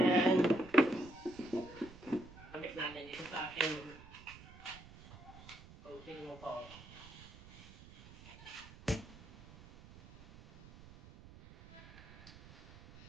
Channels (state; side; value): noise; right; rumble, 19 dB below the sound